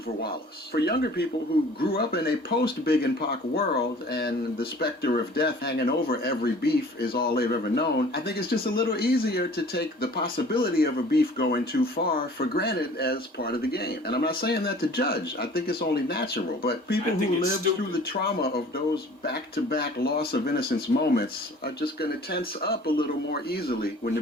Wallace. For younger people who grew up in a post-Big and Pac world and the specter of death hanging over every beef is all they've ever known, I think it's just a little easier to take the possibility of a beef going too far for granted as part of the game. And I'm not saying that to judge. I think it's only natural. But people who lived through the trauma of those back-to-back loss of innocence moments are just going to tense up a little more easily when the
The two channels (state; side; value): normal; both; correlation 0.48